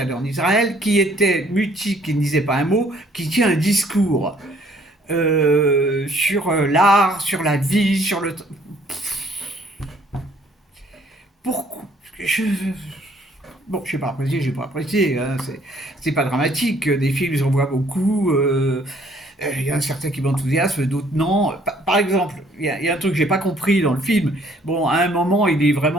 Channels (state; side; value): normal; both; correlation 0.62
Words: en Israël, qui était mutique, qui ne disait pas un mot, qui tient un discours sur l'art, sur la vie, sur le. Pourquoi Bon, je n'ai pas apprécié, j'ai pas apprécié, hein, c'est pas dramatique. Des films, j'en vois beaucoup. Il y a certains qui m'enthousiasment, d'autres non. Par exemple, il y a un truc que j'ai pas compris dans le film. Bon, à un moment, il est